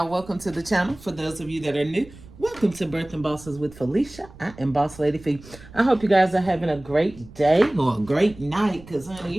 welcome to the channel. For those of you that are new, welcome to Birthing Bosses with Felicia. I am Boss Lady Fee. I hope you guys are having a great day or a great night, because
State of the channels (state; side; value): noise; right; rumble, 20 dB below the sound